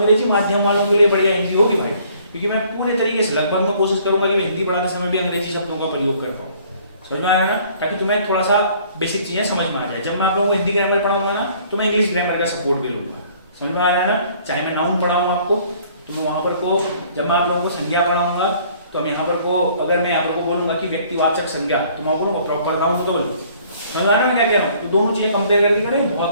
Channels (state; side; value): inverted; both; correlation -0.58